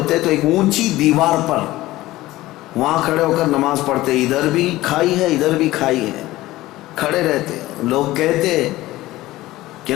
تو ایک اونچی دیوار پر وہاں کھڑے ہو کر نماز پڑھتے. ادھر بھی کھائی ہے، ادھر بھی کھائی ہے، کھڑے رہتے. لوگ کہتے کہ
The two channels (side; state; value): right; quieter; 17.2 dB